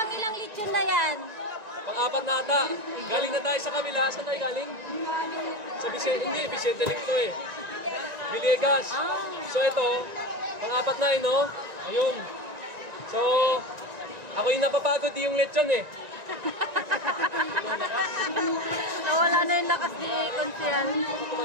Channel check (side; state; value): left; late; 1.9 ms